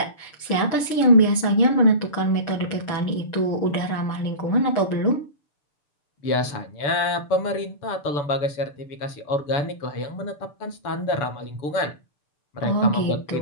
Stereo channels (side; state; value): right; late; 6.8 ms